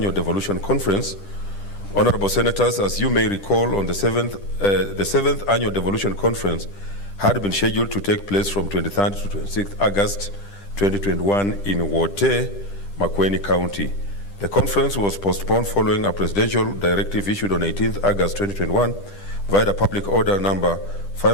devolution conference, Honorable Senators, as you may recall, on the 7th annual devolution conference had been scheduled to take place from 23rd to 26th August 2021 in Wote, Makueni County. The conference was postponed following a presidential directive issued on 18th August 2021 via the public order number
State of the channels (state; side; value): late; right; 10 ms